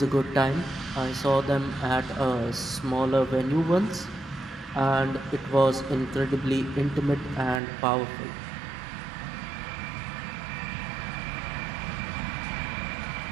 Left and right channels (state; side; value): drops out; left; at 7.6 s